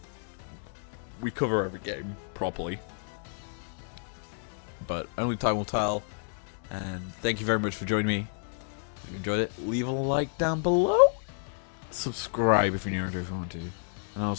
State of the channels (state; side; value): silent; right; 58 dB below the other